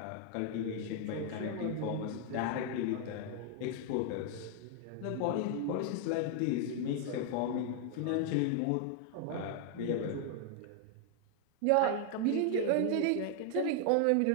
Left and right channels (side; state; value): both; different; correlation 0.00